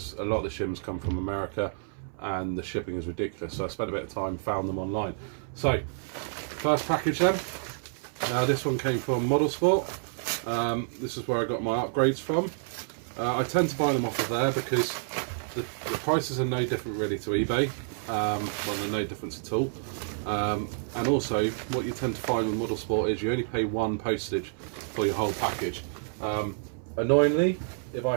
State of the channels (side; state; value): left; silent; 59 dB below the other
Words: a lot of the shims come from America and the shipping is ridiculous, so I spent a bit of time, found them online. So first package then. Now this one came from Model Sport. This is where I got my upgrades from. I tend to buy them off of there because the prices are no different really to eBay. Well, they're no difference at all. And also, what you tend to find with Model Sport is you only pay one postage for your whole package. Annoyingly, if I